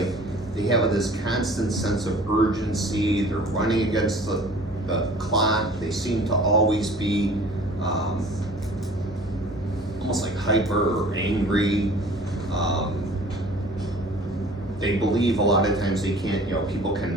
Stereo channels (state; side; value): normal; both; correlation 0.47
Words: they have this constant sense of urgency, they're running against the clock, they seem to always be almost like hyper or angry. They believe a lot of times they can't, people